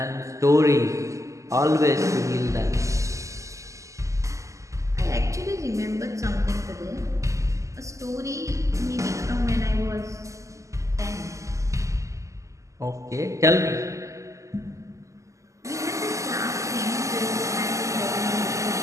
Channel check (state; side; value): late; left; 0.16 ms